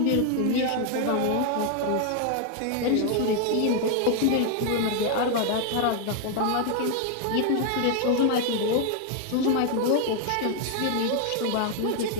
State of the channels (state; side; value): different; both; correlation 0.00